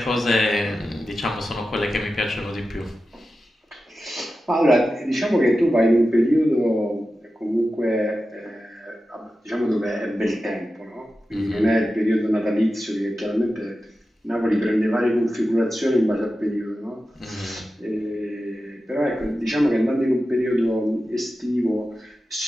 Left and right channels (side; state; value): both; normal; correlation 0.92